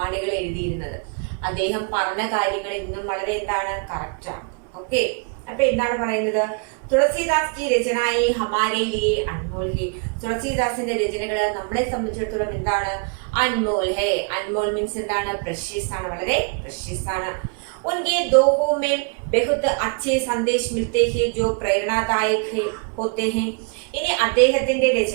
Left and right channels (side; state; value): left; quieter; 36.9 dB